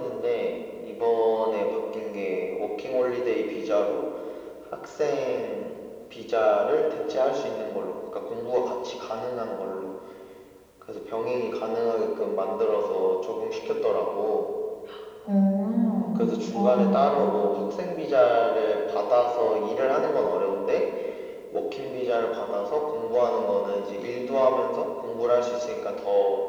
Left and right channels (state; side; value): identical; both; correlation 1.00